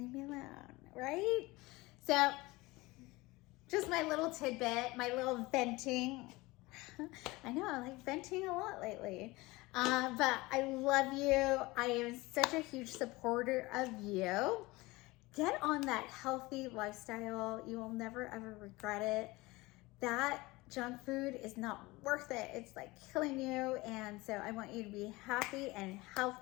me alone, right? So just my little tidbit, my little venting. I know, I like venting a lot lately. But I love you. I am such a huge supporter of you. Get on that healthy lifestyle. You will never ever regret it. That junk food is not worth it. It's like killing you. And so I want you to be happy and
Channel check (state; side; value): quieter; right; 21.7 dB